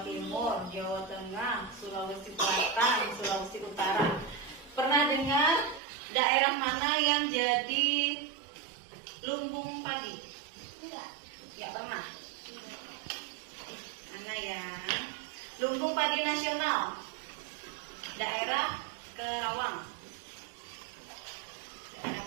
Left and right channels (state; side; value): drops out; left; at 5.8 s